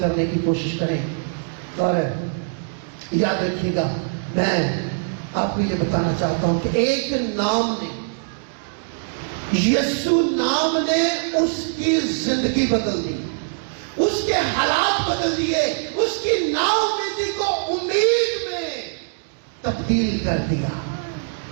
کی کوشش کریں. اور یاد رکھیے گا, میں آپ کو یہ بتانا چاہتا ہوں کہ ایک نام نے, یسوع نام نے اس کی زندگی بدل دی, اس کے حالات بدل دیے, اس کی نا امیدی کو امید میں تبدیل کر دیا.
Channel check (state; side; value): silent; left; digital silence